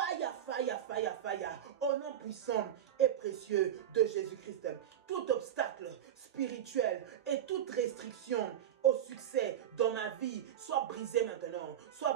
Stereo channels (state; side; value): quieter; left; 10.3 dB